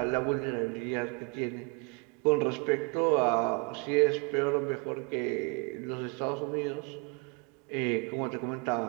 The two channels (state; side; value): quieter; left; 32.1 dB